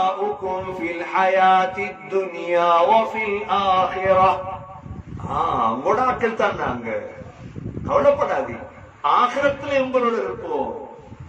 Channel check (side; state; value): both; identical; correlation 1.00